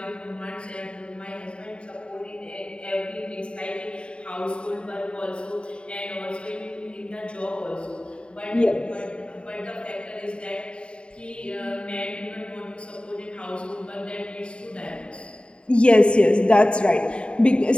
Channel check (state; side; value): late; right; 0.055 ms